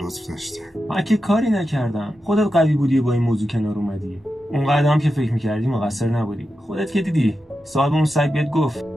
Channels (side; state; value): both; normal; correlation 0.90